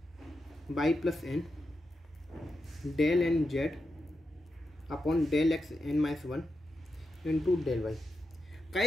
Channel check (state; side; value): normal; both; correlation 0.88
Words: y plus n del n z upon del x n minus 1 into del y.